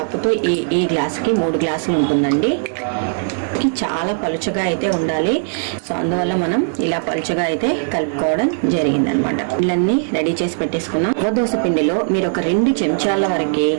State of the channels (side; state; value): left; silent; digital silence